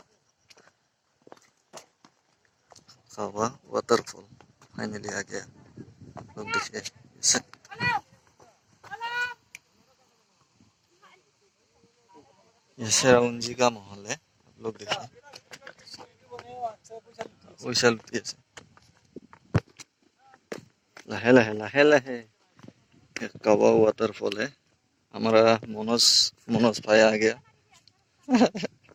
कावा वाटरफॉल फाइनली आ गया, आप लोग देखिए। ये शेराउंजी का माहौल है, आप लोग देखिए। लाहे लाहे लाहे लाहे कावा वाटरफॉल है। हमारा मनोज भाई आ गया।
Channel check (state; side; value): identical; both; correlation 1.00